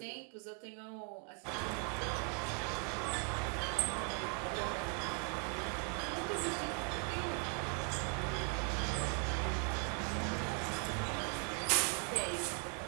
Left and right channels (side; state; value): left; quieter; 38.5 dB